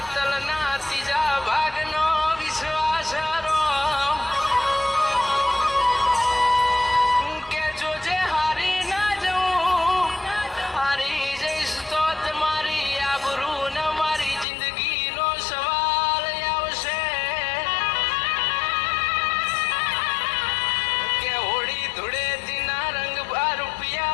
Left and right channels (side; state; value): right; drops out; at 14.5 s